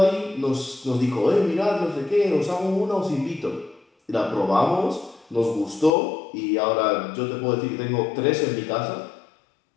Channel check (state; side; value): drops out; right; at 5.9 s